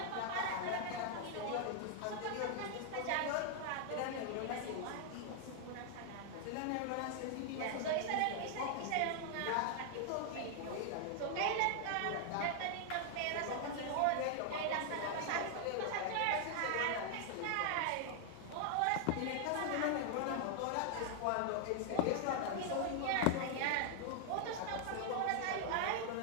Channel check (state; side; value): different; both; correlation 0.00